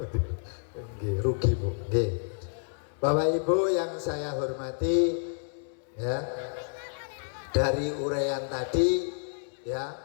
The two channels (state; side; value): silent; right; digital silence